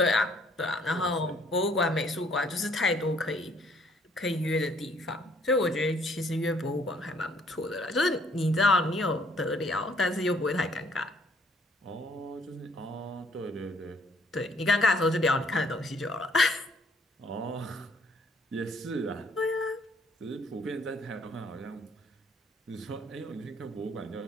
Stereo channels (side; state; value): both; normal; correlation 0.63